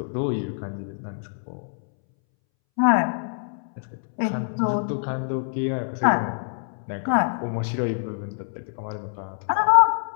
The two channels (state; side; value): silent; right; 62 dB below the other